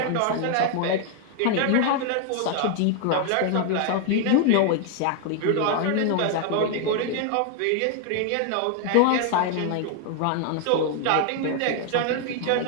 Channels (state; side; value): different; both; correlation 0.00